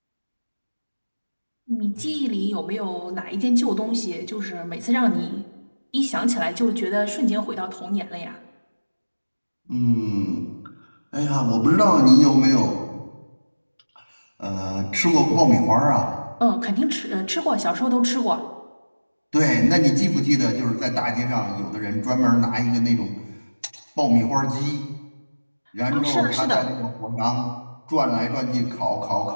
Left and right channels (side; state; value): both; inverted; correlation -1.00